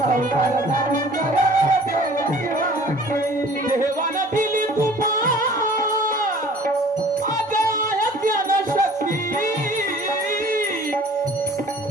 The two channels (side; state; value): both; normal; correlation 0.49